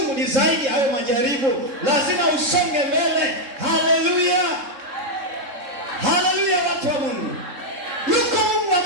ni zaidi ya hayo majaribu. Lazima usonge mbele. Haleluya. Haleluya watu wa Mungu. Yuko Mungu wa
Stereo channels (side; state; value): left; late; 3.7 ms